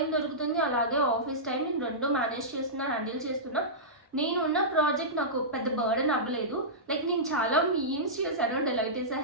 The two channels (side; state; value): both; normal; correlation -0.16